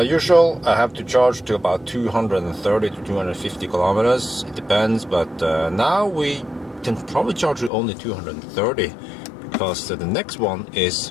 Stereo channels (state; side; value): drops out; right; at 7.7 s